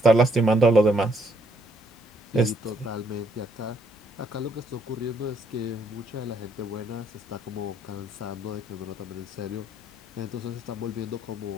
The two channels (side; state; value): both; normal; correlation 0.70